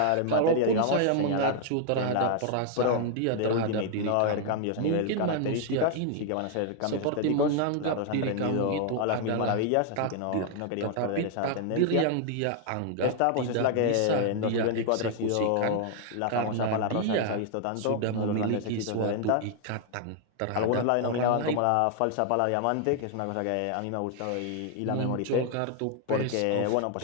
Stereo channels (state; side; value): different; both; correlation 0.00